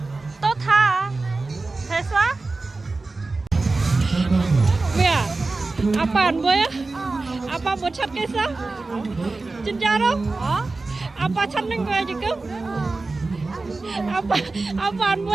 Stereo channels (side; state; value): left; quieter; 3.5 dB